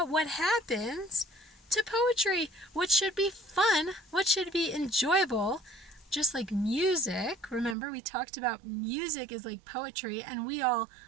what happens to poetry, what should be fun, what should be enjoyable, just like music. Remember, we talked about music is like poetry, and we all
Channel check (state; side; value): drops out; left; at 7.8 s